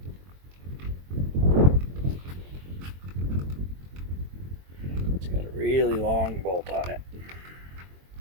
It's got a really long bolt on it.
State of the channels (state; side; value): late; left; 22 ms